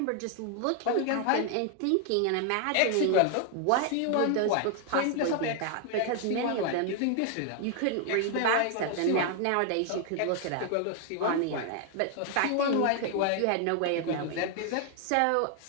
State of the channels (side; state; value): both; different; correlation 0.00